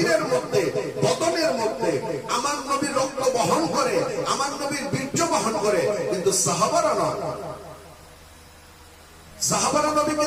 মধ্যে, বদনের মধ্যে আমার নবীর রক্ত বহন করে, আমার নবীর বীর্য বহন করে, কিন্তু সাহাবারা নয়। সাহাবারা নবীকে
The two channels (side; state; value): both; identical; correlation 1.00